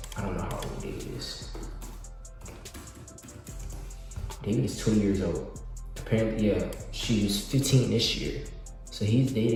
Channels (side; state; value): both; identical; correlation 1.00